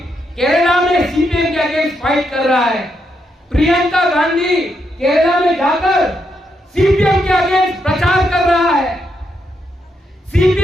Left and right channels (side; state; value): both; normal; correlation 0.80